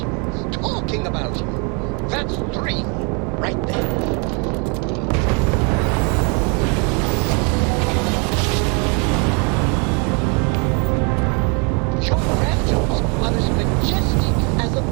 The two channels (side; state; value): left; quieter; 34.7 dB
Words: talking about you. That's 3 right there. Your raptors are as majestic as a